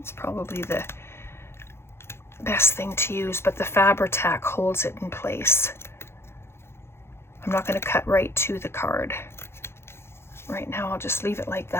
probably the best thing to use, but the Fabri-Tac holds it in place. I'm not going to cut right to the card. Right now I'll just leave it like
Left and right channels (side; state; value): right; late; 0.12 ms